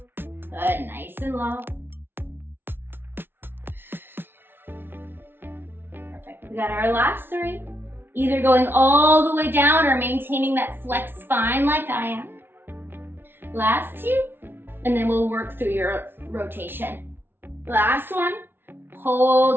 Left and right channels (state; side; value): late; left; 0.10 ms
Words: Good, nice and low. Perfect, we got our last 3. Either going all the way down or maintaining that flex spine like I am. Last 2, and then we'll work through your rotation. Last one.